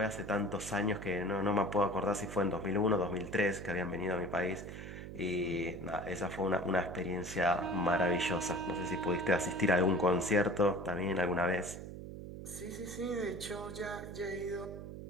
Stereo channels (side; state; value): right; noise; hum, 10 dB below the sound